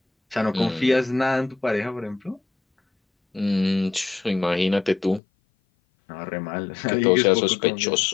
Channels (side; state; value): right; drops out; at 5.2 s